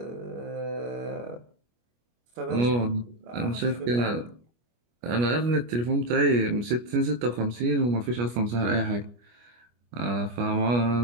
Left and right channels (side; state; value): left; late; 25 ms